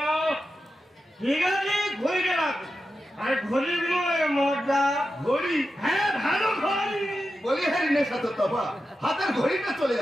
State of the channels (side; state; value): both; normal; correlation 0.90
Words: ঠিক আছে ঘড়িটা রাখো, আর ঘড়ির বিনিময়ে মদটা ঘড়ি। হ্যাঁ ভালো ঘড়ি। বলি হ্যাঁ নেশা তোর তবা, হাতের ঘড়িটা চলে